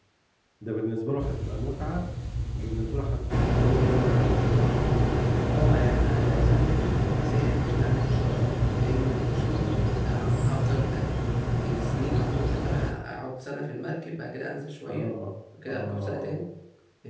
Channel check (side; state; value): both; identical; correlation 1.00